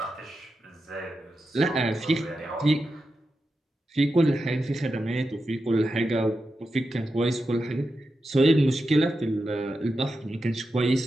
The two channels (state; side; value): normal; both; correlation 0.89